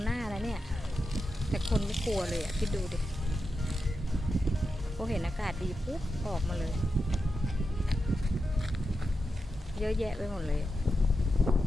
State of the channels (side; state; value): both; normal; correlation 0.88